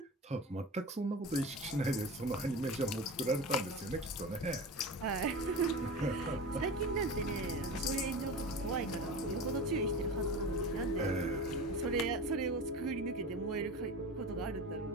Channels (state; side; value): normal; both; correlation 0.30